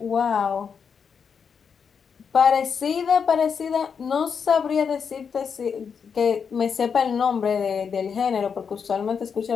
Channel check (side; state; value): right; quieter; 6.4 dB